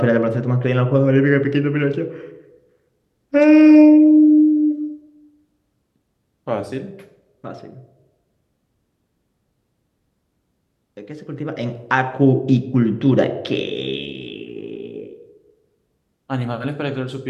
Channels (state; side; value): identical; both; correlation 1.00